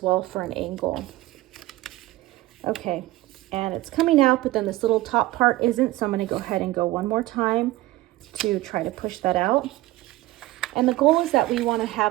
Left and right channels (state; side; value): quieter; left; 17.7 dB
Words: well for an angle. Okay, and it's coming out, but then this little top part isn't, so I'm gonna go ahead and go one more time to try to push that out. And the goal is that we wanna